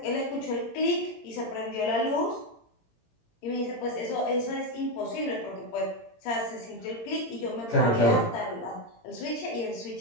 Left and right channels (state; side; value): late; right; 17 ms